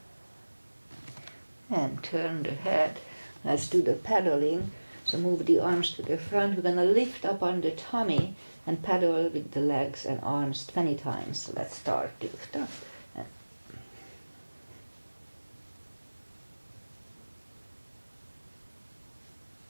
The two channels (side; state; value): both; inverted; correlation -1.00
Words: And turn the head, Let's do the paddling. So move the arms to the front. We're gonna lift up on the tummy and paddle with the legs and arms 20 times. So let's start. Lift up.